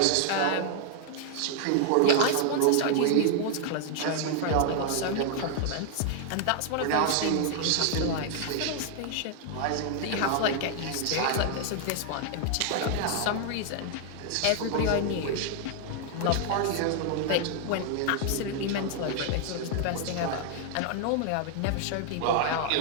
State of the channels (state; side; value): different; both; correlation 0.00